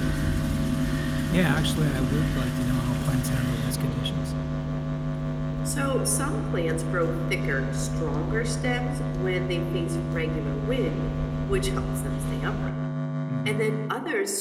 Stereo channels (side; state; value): both; identical; correlation 1.00